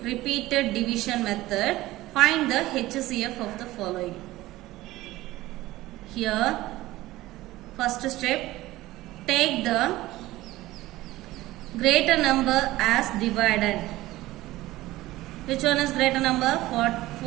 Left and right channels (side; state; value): left; quieter; 17.3 dB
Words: repeated division method, find the HCF of the following. Here, first step, take the greater number as dividend. Which one is greater number?